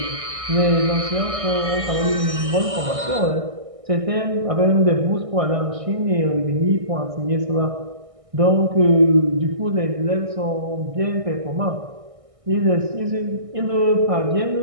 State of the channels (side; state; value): left; late; 1.6 ms